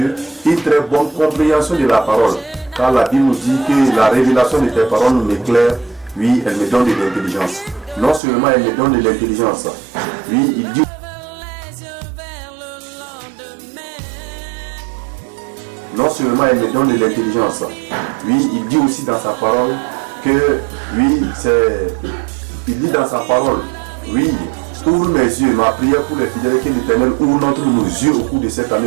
une très bonne compréhension de la parole. Car la Bible nous dit que la révélation de tes paroles m'éclaire, oui, elle me donne de l'intelligence. Non seulement elle me donne de l'intelligence, oui, il dit. Non seulement elle me donne de l'intelligence, oui, il dit aussi dans sa parole que, oui, il dit dans sa parole, oui, ouvre mes yeux, ma prière pour les fidèles, que l'Éternel ouvre nos yeux au cours de cette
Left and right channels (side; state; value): left; drops out; at 8.2 s